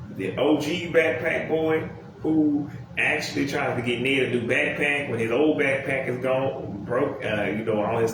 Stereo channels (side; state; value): both; identical; correlation 1.00